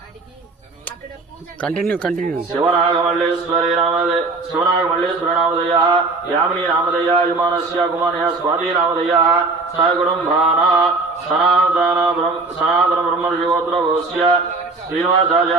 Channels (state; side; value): quieter; left; 3.7 dB